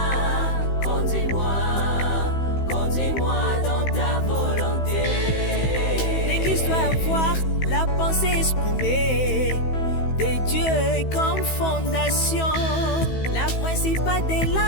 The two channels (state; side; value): late; right; 15 ms